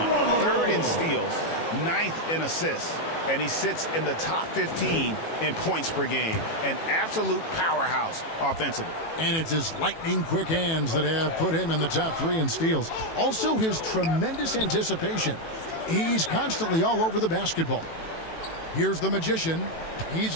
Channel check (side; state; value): right; late; 18 ms